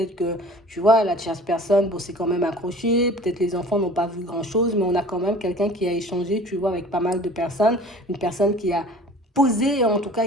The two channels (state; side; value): normal; both; correlation 0.45